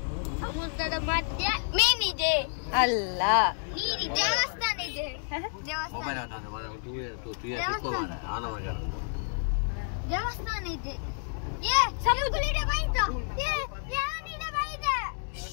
ಸಮುದ್ರದ ಮಧ್ಯೆ ಮೀನಿದೆ. ಅಲ್ಲ, ನೀರಿದೆ. ದೇವಸ್ಥಾನ ಇದೆ. ದೇವಸ್ಥಾನ ಇದೆ. ಸಮುದ್ರ ಇದೆ. ಬೈದ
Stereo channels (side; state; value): right; silent; 58 dB below the other